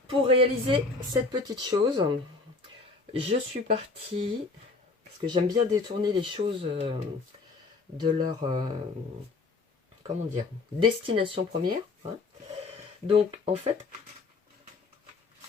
pour réaliser cette petite chose, je suis partie, parce que j'aime bien détourner les choses de leur, comment dire, destination première, hein. Donc, en fait,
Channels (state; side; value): quieter; right; 3.8 dB